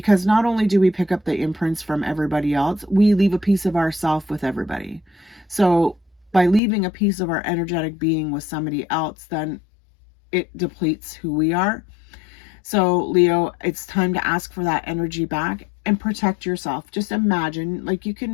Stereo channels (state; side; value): drops out; right; at 6.6 s